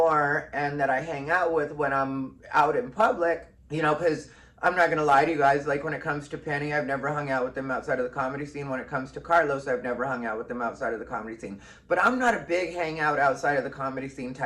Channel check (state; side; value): identical; both; correlation 1.00